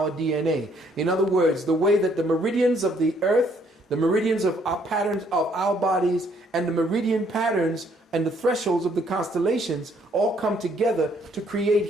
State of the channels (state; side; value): normal; both; correlation 0.66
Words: DNA. In other words, the way that the meridians of the earth, the meridians of our patterns of our bodies, and the meridian patterns and the thresholds of the constellations all come together to